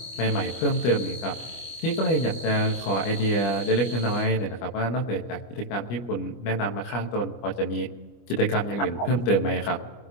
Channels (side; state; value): right; late; 25 ms